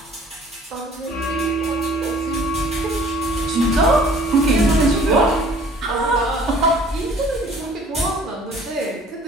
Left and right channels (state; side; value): normal; both; correlation 0.52